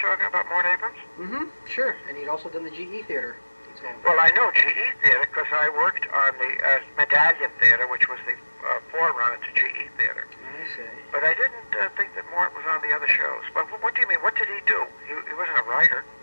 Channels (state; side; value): inverted; both; correlation -1.00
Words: about Mort Abrams? Mm-hmm, sure. And he'd also done the GE Theater. Well, I know GE Theater because I worked on the Medallion Theatre, which was the forerunner to GE Theater. I see. But I didn't think that Mort was on the other shows. But what do you mean? What did he do? He wasn't a writer.